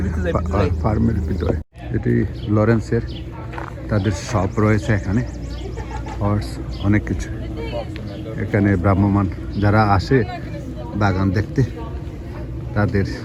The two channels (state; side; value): identical; both; correlation 1.00